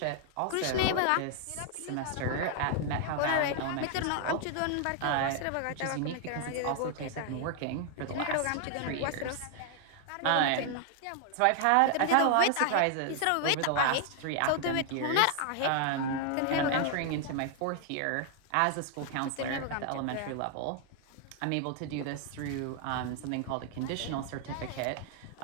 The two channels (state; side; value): different; both; correlation 0.00